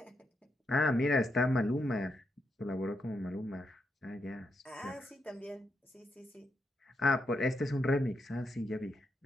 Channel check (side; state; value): both; normal; correlation 0.82